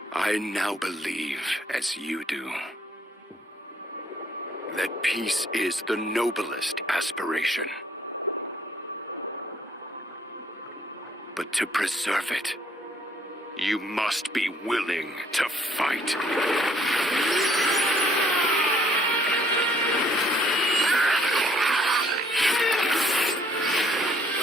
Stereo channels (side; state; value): both; normal; correlation 0.63